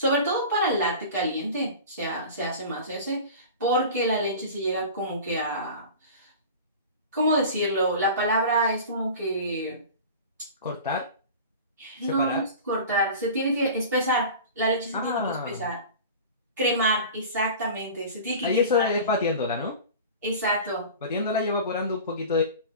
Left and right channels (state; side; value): inverted; both; correlation -0.36